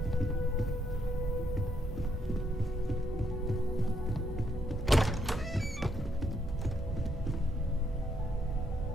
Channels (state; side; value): normal; both; correlation 0.75